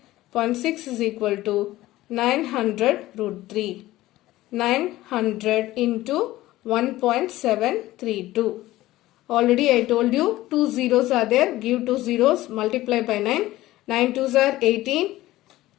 is equal to 900 root 3. 900 into 1.732. Already I told you 2 zeros are there. Give 2 zeros, multiply by 9. 9 2s are 18.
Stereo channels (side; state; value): right; quieter; 16.5 dB